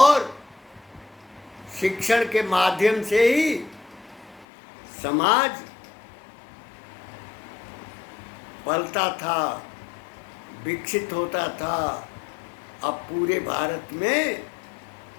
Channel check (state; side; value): drops out; right; at 4.5 s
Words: शिक्षण के माध्यम से ही समाज पलता था, विकसित होता था। अब पूरे भारत में